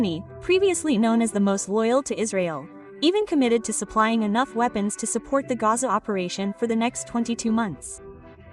previously known as the most loyal to Israel, even committed to supplying enough weapons to support the Gaza operation for the next 22 months.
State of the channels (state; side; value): identical; both; correlation 1.00